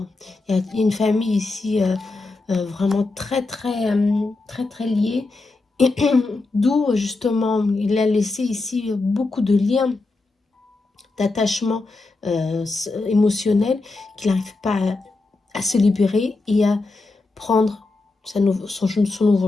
Il y a une famille ici vraiment très liée. D'où justement, il a laissé ici beaucoup de liens, d'attachement émotionnel, qu'il n'arrive pas à se libérer et à prendre son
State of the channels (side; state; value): right; quieter; 3.4 dB